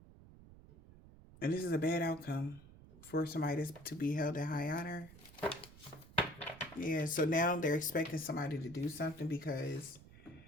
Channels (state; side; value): noise; right; rumble, 20 dB below the sound